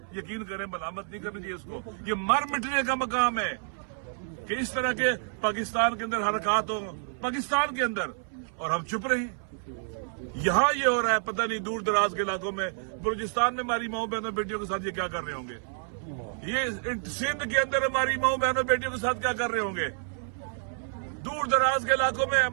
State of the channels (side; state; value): left; silent; 59 dB below the other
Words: یقین کریں ملامت نہیں کرنی چاہیے اس کو۔ یہ مر مٹنے کا مقام ہے کہ اس طرح کے پاکستان کے اندر حرکات ہوں، پاکستان کے اندر، اور ہم چپ رہے ہیں۔ یہاں یہ ہو رہا ہے، پتہ نہیں دور دراز کے علاقوں میں، بلوچستان میں ہماری ماؤں بہنوں بیٹیوں کے ساتھ یہ کیا کر رہے ہوں گے، یہ سندھ کے اندر ہماری ماؤں بہنوں بیٹیوں کے ساتھ کیا کر رہے ہوں گے، دور دراز کے علاقوں میں